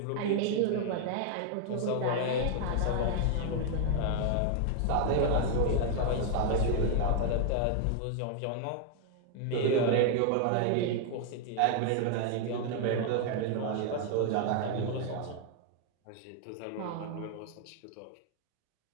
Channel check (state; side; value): different; both; correlation 0.00